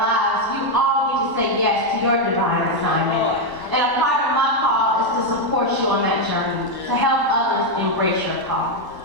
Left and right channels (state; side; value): late; left; 1.0 ms